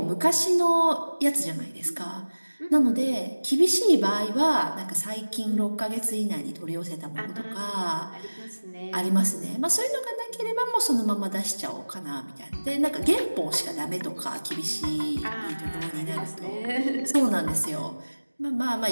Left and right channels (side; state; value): both; inverted; correlation -1.00